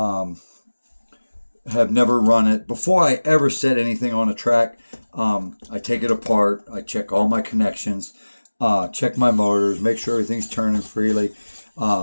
have never run it. Before I ever set anything on a track, I take it apart. I check all my connections, check my motors, make sure everything's turning freely.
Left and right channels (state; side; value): inverted; both; correlation -1.00